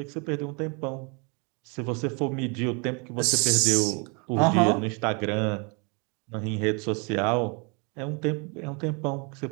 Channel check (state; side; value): quieter; left; 33.1 dB